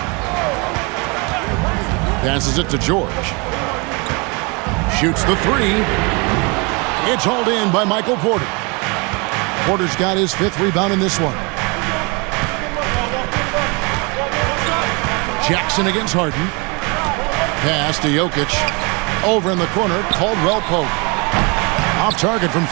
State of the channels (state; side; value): quieter; left; 30.3 dB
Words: Passes it to George. Shoots the 3. It's hauled in by Michael Porter. Porter's got his 5th rebound in this one. Jackson against Harden. Pass to Jokic. Over in the corner, Caldwell Pope. Off target from